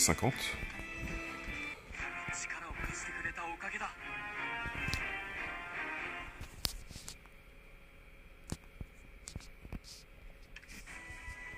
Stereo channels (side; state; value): both; identical; correlation 1.00